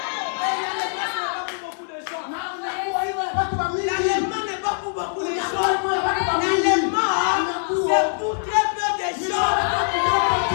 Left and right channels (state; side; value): silent; right; 63 dB below the other